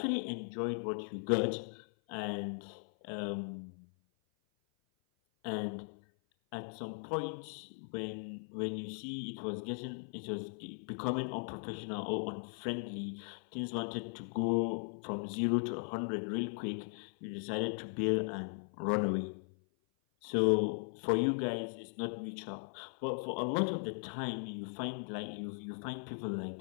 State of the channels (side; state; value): right; silent; 52 dB below the other